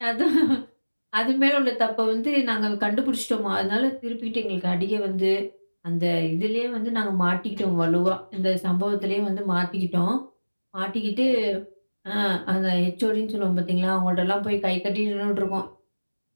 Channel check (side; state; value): both; inverted; correlation -1.00